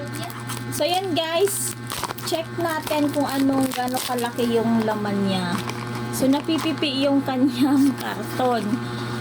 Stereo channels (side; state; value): both; identical; correlation 1.00